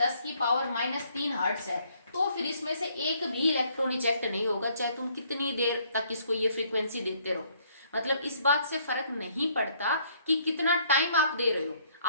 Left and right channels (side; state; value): both; inverted; correlation -0.64